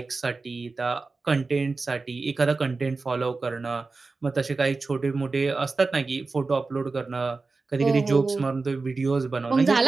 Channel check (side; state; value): left; quieter; 3.9 dB